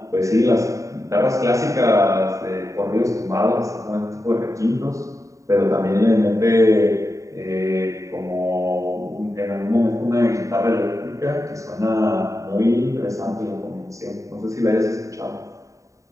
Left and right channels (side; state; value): left; late; 0.16 ms